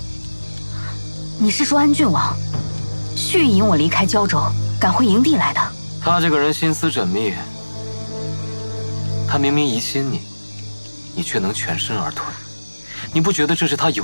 你是说安郡王蓄意引我离开胶州，赶回营地来的？他这个人心思缜密，他明明疑心你，你却能全身而退，你不觉得这是他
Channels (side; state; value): both; inverted; correlation -1.00